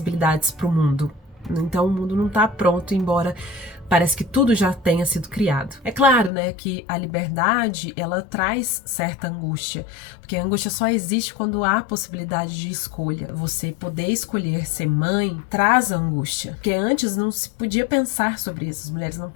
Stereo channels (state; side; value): drops out; right; at 6.3 s